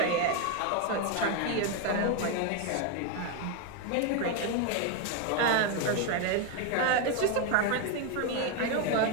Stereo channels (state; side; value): different; both; correlation 0.01